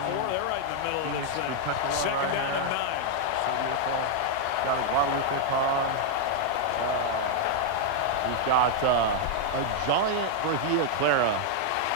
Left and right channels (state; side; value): different; both; correlation 0.00